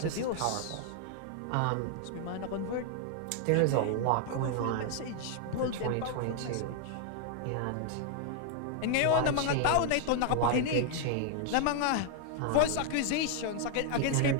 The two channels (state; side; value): different; both; correlation 0.00